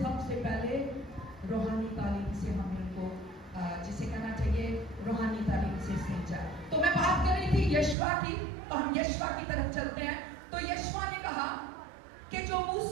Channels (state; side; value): drops out; left; at 8.0 s